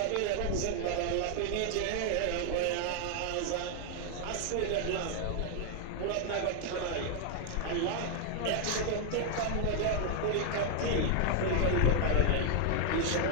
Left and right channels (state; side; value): different; both; correlation 0.00